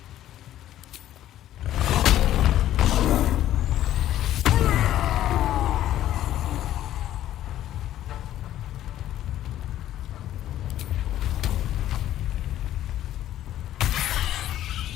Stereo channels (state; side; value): quieter; right; 12.7 dB